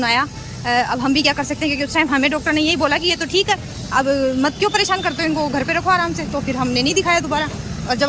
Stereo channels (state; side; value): identical; both; correlation 1.00